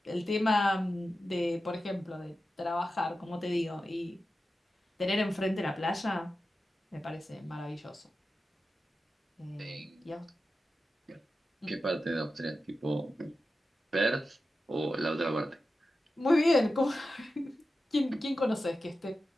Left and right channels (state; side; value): normal; both; correlation 0.92